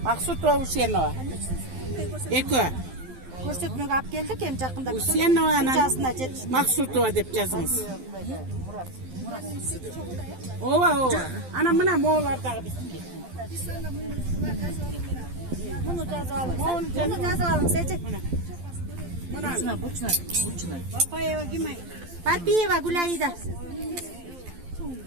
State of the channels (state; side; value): late; left; 12 ms